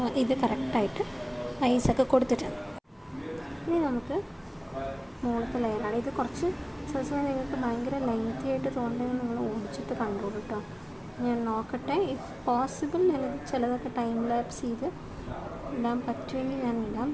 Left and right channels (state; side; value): identical; both; correlation 1.00